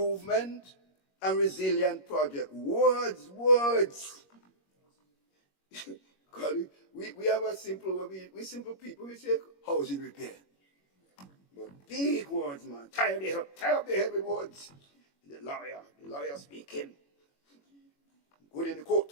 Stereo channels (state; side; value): late; right; 21 ms